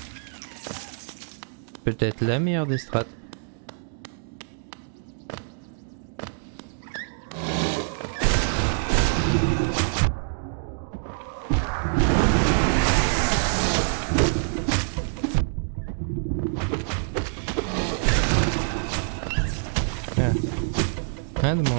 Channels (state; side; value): silent; left; digital silence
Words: Peut-être la meilleure des strats. Rien de